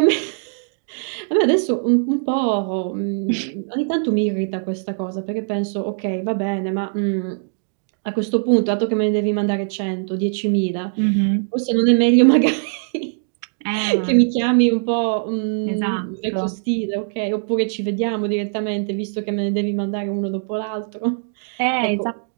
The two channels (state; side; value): silent; left; digital silence